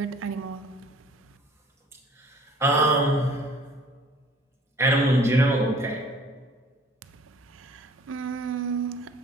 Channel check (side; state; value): both; normal; correlation 0.53